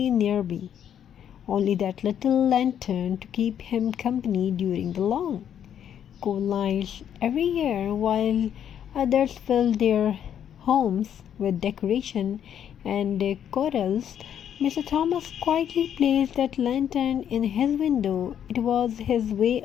nearby, only that little lantern to keep him company during the long, cold nights every year while others filled their homes with decoration and corals. Mr. Thomas quietly placed that lantern in his window. It was his way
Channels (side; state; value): right; quieter; 9.4 dB